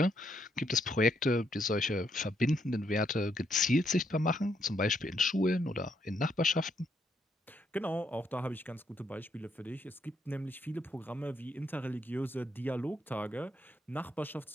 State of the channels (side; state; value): both; normal; correlation 0.75